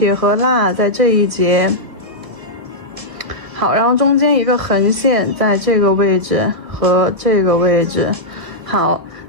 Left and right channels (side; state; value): left; late; 1.7 ms